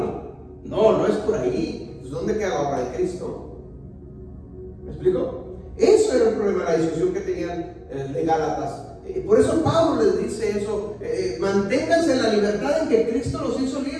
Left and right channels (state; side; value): identical; both; correlation 1.00